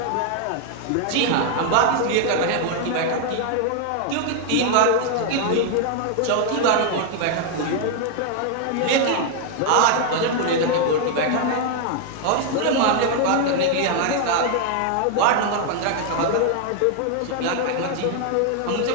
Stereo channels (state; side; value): different; both; correlation 0.00